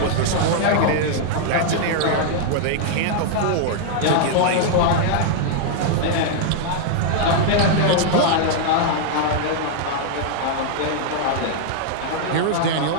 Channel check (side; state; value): both; different; correlation 0.00